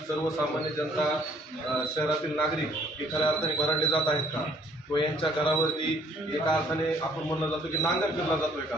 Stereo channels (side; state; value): both; normal; correlation 0.61